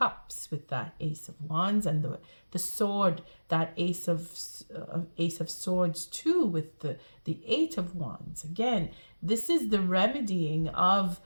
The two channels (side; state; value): both; inverted; correlation -1.00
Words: with that Ace of Wands, and the sword, that Ace of Swords too, with the Eight of Wands. Again, this is the remedying of